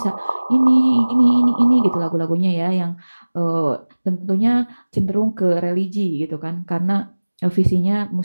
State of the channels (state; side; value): inverted; both; correlation -1.00